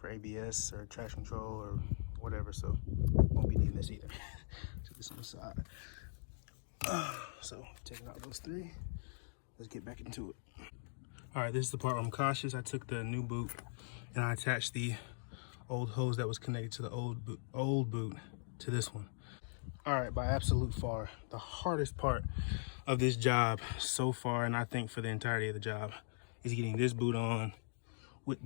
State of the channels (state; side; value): silent; right; digital silence